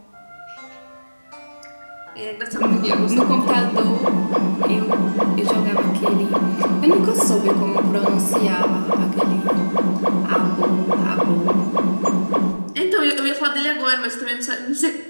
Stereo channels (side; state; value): both; inverted; correlation -1.00